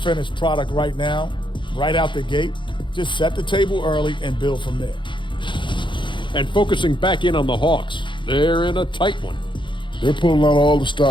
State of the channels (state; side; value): late; right; 0.23 ms